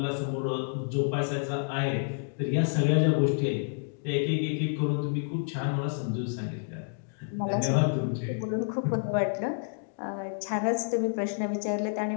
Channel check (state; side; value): silent; right; digital silence